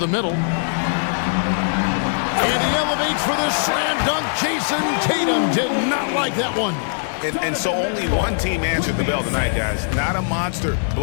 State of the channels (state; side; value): silent; right; digital silence